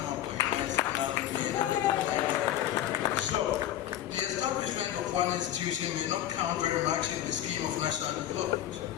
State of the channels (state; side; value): quieter; right; 12.2 dB